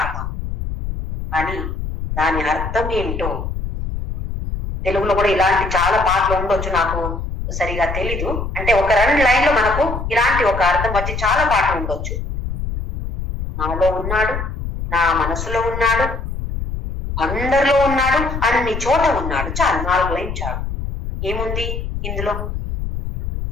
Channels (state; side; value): noise; left; rumble, 5 dB below the sound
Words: కానీ దాని అర్థం ఏంటో తెలుగులో కూడా ఇలాంటి చాలా పాటలు ఉండొచ్చు, నాకు సరిగా తెలీదు. అంటే ఒక 2 లైన్లో మనకు ఇలాంటి ఒక అర్థం వచ్చి చాలా పాటలు ఉండొచ్చు. నాలో ఉన్నాడు, నా మనసులో ఉన్నాడు, అందరిలో ఉన్నాడు, అన్ని చోట ఉన్నాడు. చాలు, 4 లైన్ చాలు. ఏముంది ఇందులో?